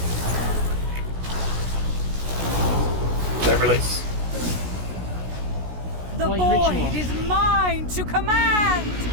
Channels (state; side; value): late; left; 16 ms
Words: Don't release. The void is mine to command.